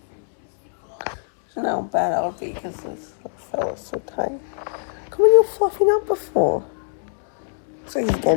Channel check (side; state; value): right; silent; digital silence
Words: know how bad that would be because this fella's so tiny. Come on, you're fluffing up before. So he's